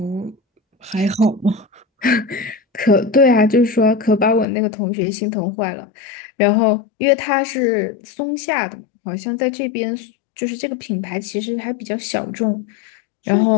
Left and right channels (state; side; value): drops out; right; at 4.5 s